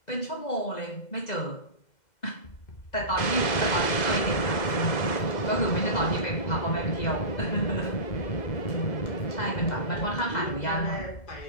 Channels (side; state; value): right; late; 2.0 ms